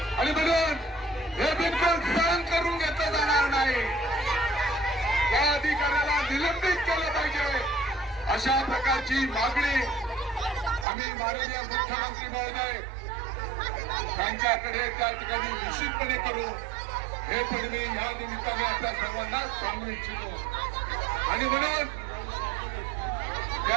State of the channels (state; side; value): drops out; left; at 10.9 s